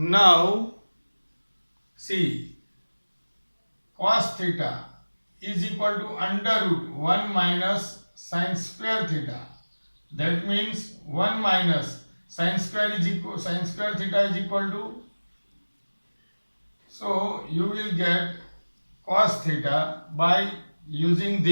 see, cos theta is equal to under root 1 minus sin square theta. That means 1 minus sin square theta is equal to, so you will get cos theta by using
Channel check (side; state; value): both; inverted; correlation -1.00